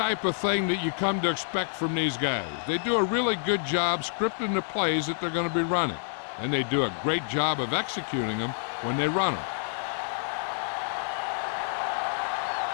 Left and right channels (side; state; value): right; silent; digital silence